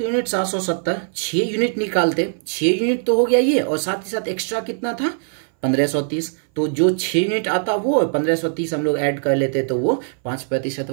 यूनिट 770, 6 यूनिट निकालते, 6 यूनिट तो हो गया ये, और साथ ही साथ एक्स्ट्रा कितना था? 1530। तो जो 6 यूनिट आता वो, 1530 हम लोग ऐड कर लेते तो वो 5%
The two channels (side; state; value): left; silent; 60 dB below the other